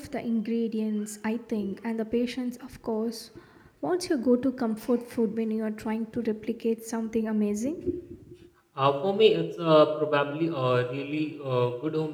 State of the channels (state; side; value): identical; both; correlation 1.00